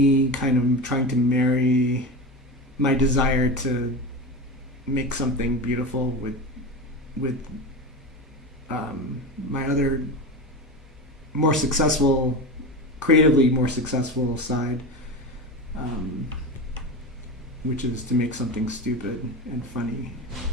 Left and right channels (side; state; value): both; normal; correlation 0.25